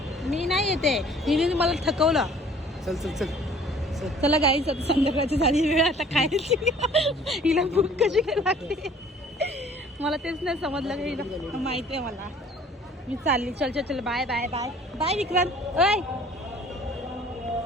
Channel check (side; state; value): both; normal; correlation 0.53